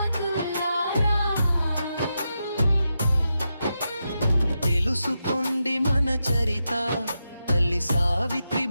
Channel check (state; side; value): inverted; both; correlation -0.87